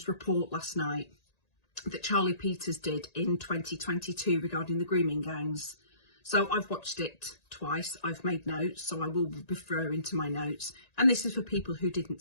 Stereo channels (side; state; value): right; late; 1.9 ms